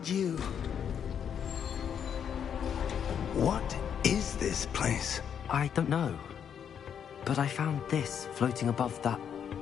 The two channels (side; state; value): right; quieter; 8.2 dB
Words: you... What is this place? I don't know. But I found this floating above that